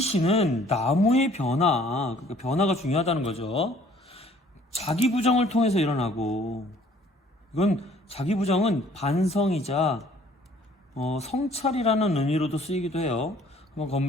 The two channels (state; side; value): normal; both; correlation 0.57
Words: 나무의 변화, 그러니까 변화가 중요하다는 거죠. 자기 부정을 통해서 일어나고, 이건 자기 부정은 반성이자 성찰이라는 의미로도 쓰이기도 해요. 한번